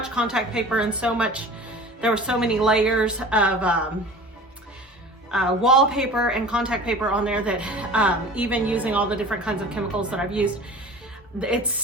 contact paper and there were so many layers of wallpaper and contact paper on there that even using all the different kinds of chemicals that I've used,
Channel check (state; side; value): normal; both; correlation 0.40